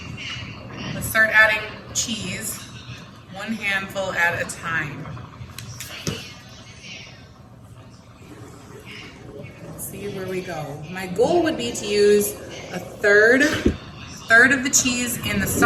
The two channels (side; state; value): both; identical; correlation 1.00